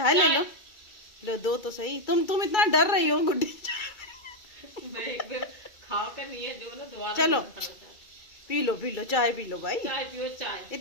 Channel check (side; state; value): right; late; 2.3 ms